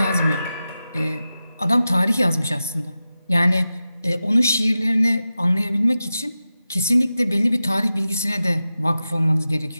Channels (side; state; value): both; inverted; correlation -0.93